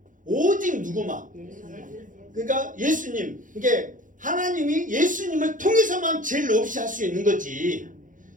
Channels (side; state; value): left; late; 0.38 ms